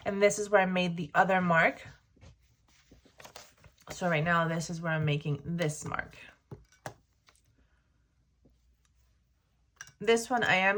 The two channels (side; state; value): both; identical; correlation 1.00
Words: And this is where I made the other mark. So right now, this is where I'm making this mark. This one I am